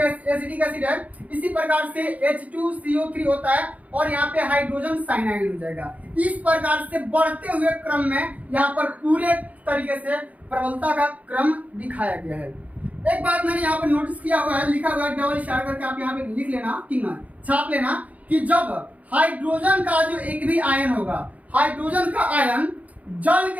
एसिडिक एसिड है। इसी प्रकार से H2CO3 होता है, और यहाँ पे हाइड्रोजन साइनाइड हो जाएगा। इस प्रकार से बढ़ते हुए क्रम में यहाँ पर पूरे तरीके से प्रबलता का क्रम दिखाया गया है। एक बात मैंने यहाँ पर नोटिस किया हुआ है, लिखा हुआ है, डबल इशारा करके आप यहाँ पे लिख लेना, ठीक ना, छाप लेना, कि जब हाइड्रोजन का जो एक भी आयन होगा, हाइड्रोजन का आयन जल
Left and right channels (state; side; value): late; left; 0.071 ms